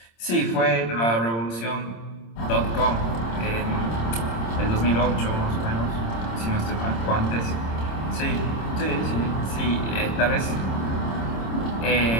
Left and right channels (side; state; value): right; late; 26 ms